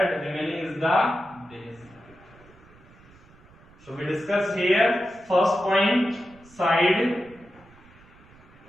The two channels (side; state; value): right; noise; rumble, 25 dB below the sound